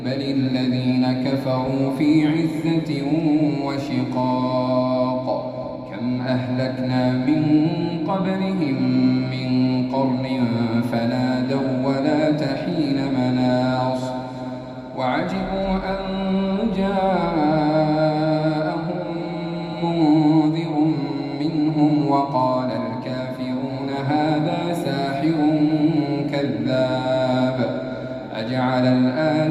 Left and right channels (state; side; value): identical; both; correlation 1.00